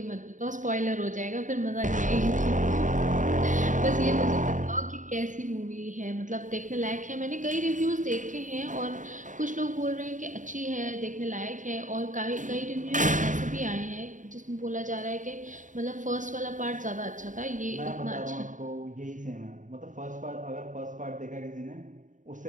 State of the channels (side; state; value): left; late; 0.37 ms